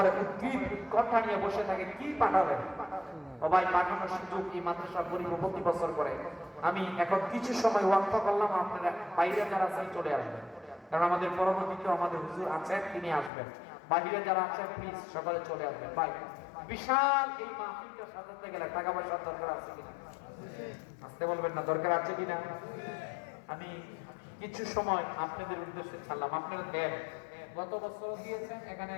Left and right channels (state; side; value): drops out; right; at 13.3 s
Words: উদ্ভিদ কথা নিয়ে বসে থাকে, কি পাঠাবেন? সবাই পাঠানোর সুযোগ এই মাদ্রাসা গরিব প্রতি বছর করে। আমি এখন কিছু সময় ওয়াক্ফ করলাম, আপনারা বাইরে যারা আছেন চলে আসবেন, কারণ আমাদের পরবর্তীতে আমাদের হুজুর আছেন, তিনি আসবেন। বাইরে যারা আছেন প্লিজ সকালে চলে আসবেন। ভাই, বিশাল এই মাহফিলটা সাজাতে গেলে টাকা পয়সার দরকার আছে কিনা? আসতে বলবেন না, দরকার আছে কিনা? আমি কিছু সময় আপনাদের উদ্দেশ্যে ছাড়লাম, আপনারা দেন। গত বছর দিয়েছেন, এখানে